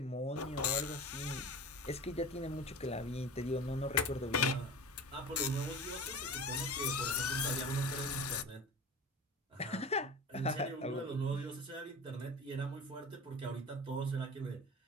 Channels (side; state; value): both; normal; correlation 0.34